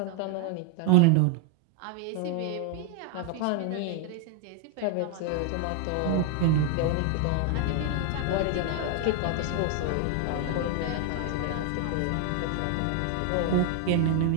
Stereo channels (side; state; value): both; different; correlation 0.00